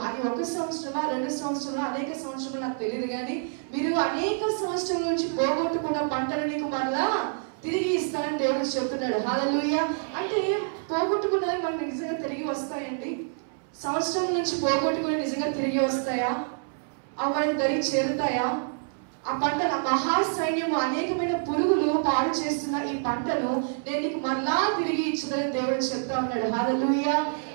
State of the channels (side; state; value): left; silent; 60 dB below the other